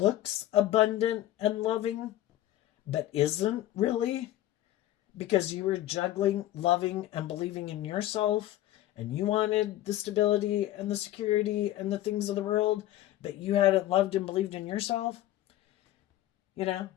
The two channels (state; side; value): quieter; right; 14.1 dB